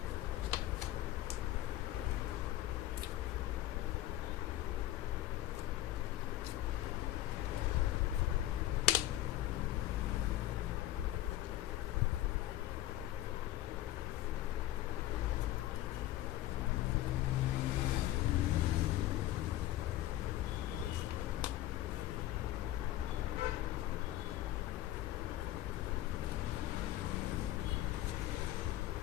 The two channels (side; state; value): right; quieter; 14.5 dB